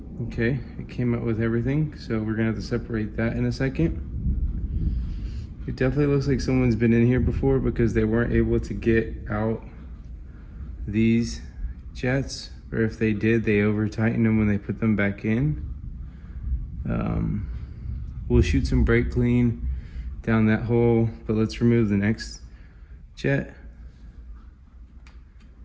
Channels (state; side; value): identical; both; correlation 1.00